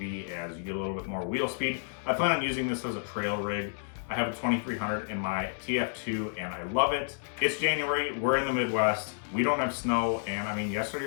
as you get a little bit more wheel speed. I plan on using this as a trail rig. I have a 2300 in my TF2 and I love it. It's January, we're in the Midwest, we don't have snow, and I mean, yesterday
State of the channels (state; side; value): silent; right; digital silence